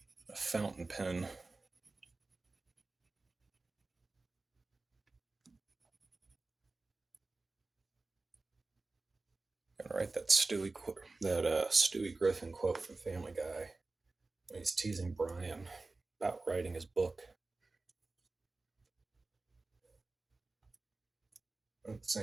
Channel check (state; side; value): quieter; left; 3.4 dB